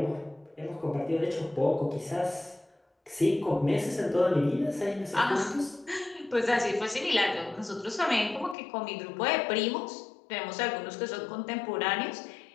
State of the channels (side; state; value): right; drops out; at 8.6 s